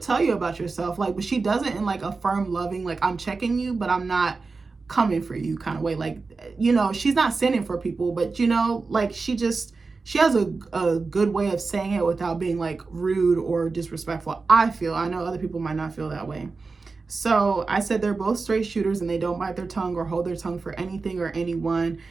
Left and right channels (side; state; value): left; quieter; 4.2 dB